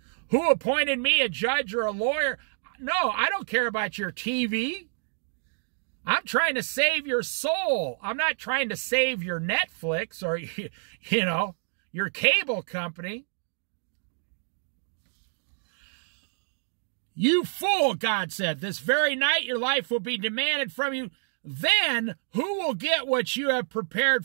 Who appointed me a judge or a lawyer? No, I don't care about your TV. I'm trying to save your soul. I'm not trying to save your Netflix or, your cable company. You fool, God said, this very night your life will be demanded from you. Then who will get what you have prepared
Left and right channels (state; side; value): silent; left; 59 dB below the other